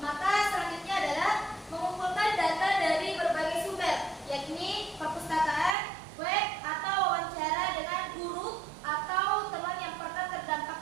maka selanjutnya adalah mengumpulkan data dari berbagai sumber, yakni perpustakaan, web, atau wawancara dengan guru atau teman yang pernah terdampak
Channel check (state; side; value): drops out; left; at 5.8 s